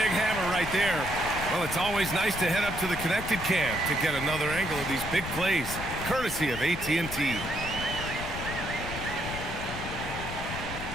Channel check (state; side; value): noise; left; rumble, 9 dB below the sound